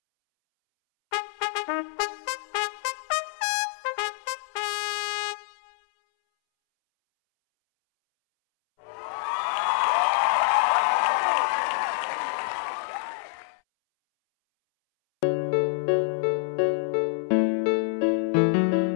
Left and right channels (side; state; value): right; silent; 61 dB below the other